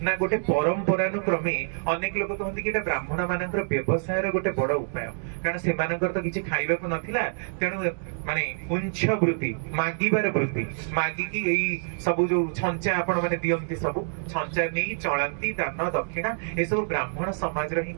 ना गोटे परंपरानुक्रमे अनेक लोक कहନ୍ତି कि एटा ब्राह्मण मानकर व्यवसाय रो गोटे बड़ उपाय कारण से मानकर तो किछि खाइबा को नथिला तेनु माने उंच वृत्ति मागिबार वृत्ति मागी कि एई सब जो छंचा आपण माने दियंती सब छंचा नै चळंती दान दक्षिणा ए सब ब्राह्मण समाज रो ही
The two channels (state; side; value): silent; left; digital silence